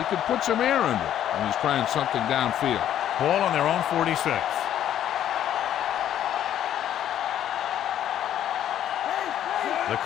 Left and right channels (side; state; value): right; quieter; 10.9 dB